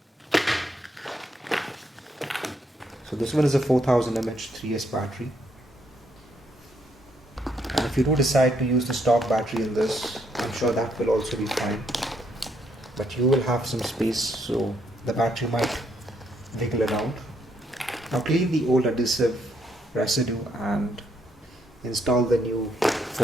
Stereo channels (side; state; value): both; normal; correlation 0.73